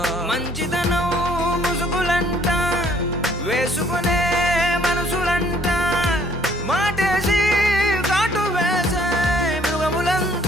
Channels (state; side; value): normal; both; correlation 0.61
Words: మంచితనం ముసుగులంట వేసుకునే మనసులంట మాటేసి కాటు వేసే